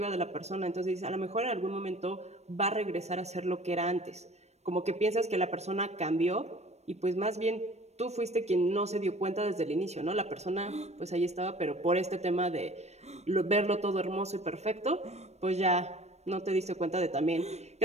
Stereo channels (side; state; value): left; late; 0.32 ms